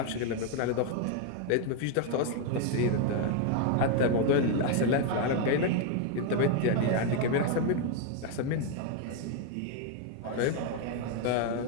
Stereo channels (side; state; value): both; different; correlation 0.01